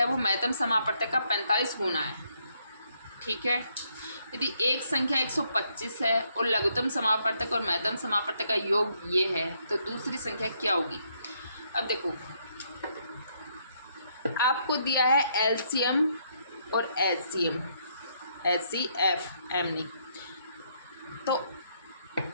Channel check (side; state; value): both; inverted; correlation -0.73